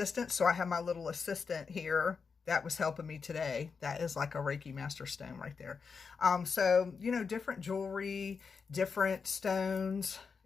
So I have my little assistant here that was helping me today. That is like a Reiki master stone right there. So, different jewelry, different stones.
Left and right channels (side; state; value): right; quieter; 5.4 dB